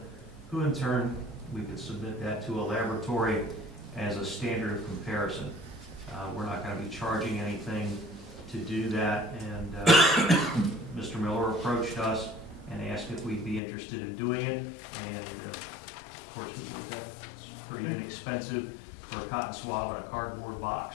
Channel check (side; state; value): right; drops out; at 13.6 s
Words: who in turn, we could submit that to a laboratory as a standard of comparison. We're not going to be charging anything to do that, and Mr. Miller approached us and asked if we'd be interested in doing it, and of course we did that. It's pretty inexpensive for a cotton swab in a cardboard